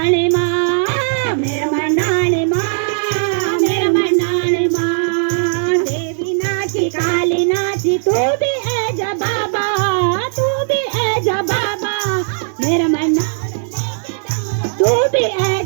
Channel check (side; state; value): left; silent; digital silence